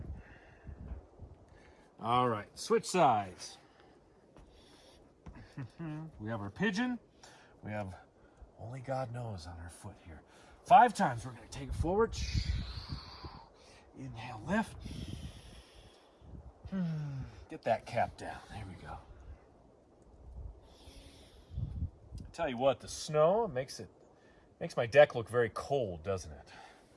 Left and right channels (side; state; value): both; identical; correlation 1.00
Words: All right, switch sides. We have our pigeon. We have only God knows on our foot here. 5 times. We're going to take it forward. Inhale, lift. Get that cap down. There we go. I tell you what, the snow makes my deck look very cold, doesn't it?